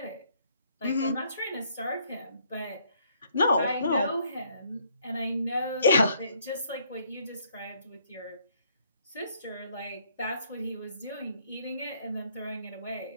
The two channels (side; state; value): both; inverted; correlation -0.67